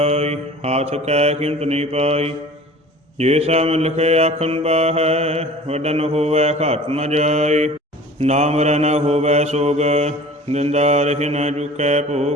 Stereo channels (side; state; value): both; normal; correlation 0.44